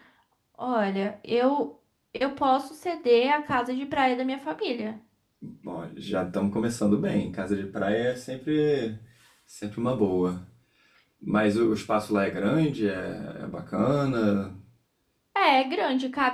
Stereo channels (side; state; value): both; identical; correlation 1.00